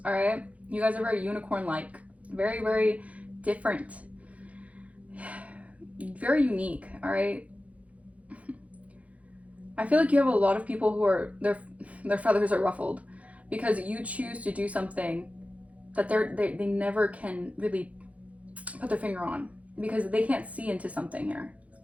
All right. You guys are very unicorn-like. Very, very different. Very unique. All right. I feel like you have a lot of people who are, their feathers are ruffled because you choose to do something that they never can really put their finger on, because they can't see into something here.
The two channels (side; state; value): left; late; 0.067 ms